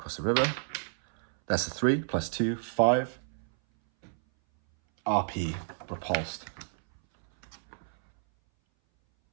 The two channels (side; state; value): left; silent; 58 dB below the other